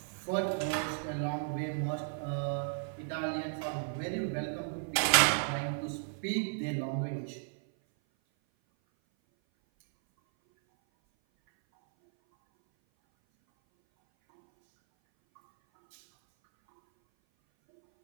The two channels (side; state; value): left; silent; 55 dB below the other